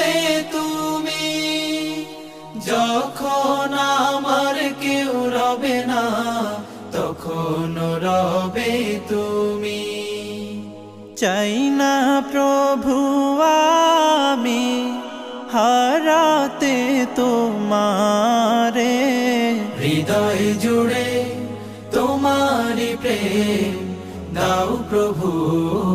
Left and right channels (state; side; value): identical; both; correlation 1.00